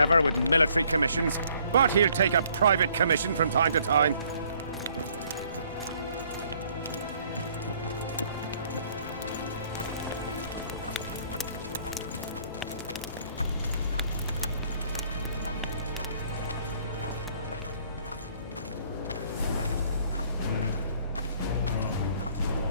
with military commissions, but he'll take a private commission from time to time.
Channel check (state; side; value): inverted; both; correlation -0.62